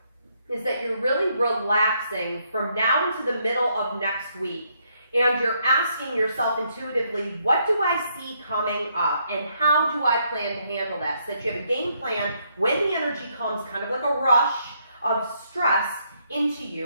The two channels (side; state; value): both; inverted; correlation -0.73